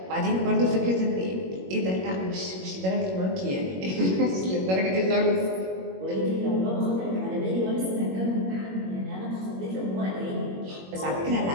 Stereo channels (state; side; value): late; left; 21 ms